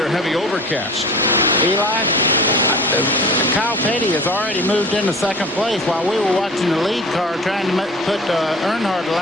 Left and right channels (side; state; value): both; normal; correlation 0.40